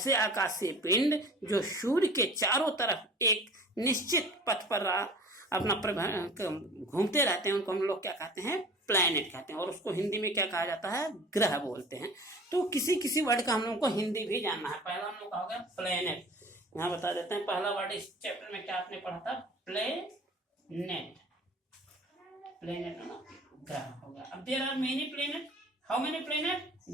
आकाशीय पिंड जो सूर्य के चारों तरफ एक निश्चित पथ पर अपना घूमते रहते हैं, उनको हम लोग क्या कहते हैं? प्लैनेट कहते हैं। और उसको हिंदी में क्या कहा जाता है? ग्रह बोलते हैं। तो किसी किसी वर्ड का हम लोगों को हिंदी भी जानना है। पहला हम लोग का हो गया प्लैनेट, यहाँ बता देते हैं। पहला वर्ड इस चैप्टर में क्या आपने पढ़ा था? प्लेनेट। प्लेनेट ग्रह हो गया। अब there are many planet. How many planet?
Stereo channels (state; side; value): normal; both; correlation 0.43